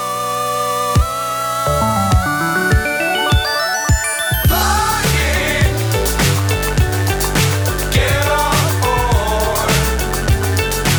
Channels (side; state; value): both; identical; correlation 1.00